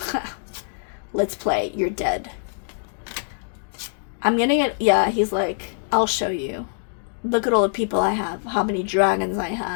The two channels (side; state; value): right; silent; digital silence